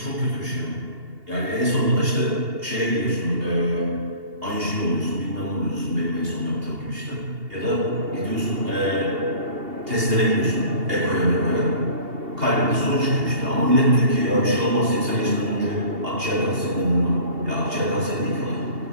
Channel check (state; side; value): late; left; 2.8 ms